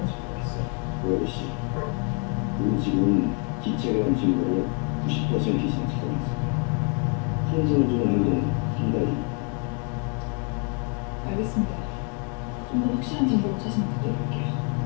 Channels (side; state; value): right; quieter; 38.9 dB